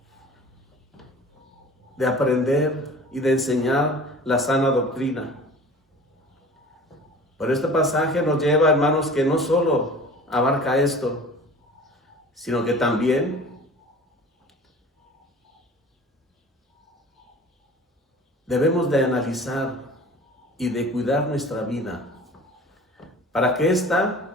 de aprender y de enseñar la sana doctrina. Pero este pasaje nos lleva, hermanos, que no solo abarca esto, sino que también debemos de analizar y de cuidar nuestra vida para que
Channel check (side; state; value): both; normal; correlation 0.42